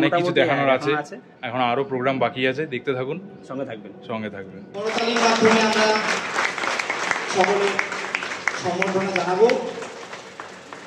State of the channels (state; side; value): identical; both; correlation 1.00